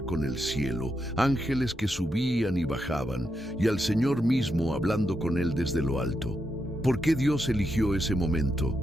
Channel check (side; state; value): both; normal; correlation 0.84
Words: el cielo, ángeles que subían y bajaban, y al Señor mismo hablando con él desde lo alto. ¿Por qué Dios eligió ese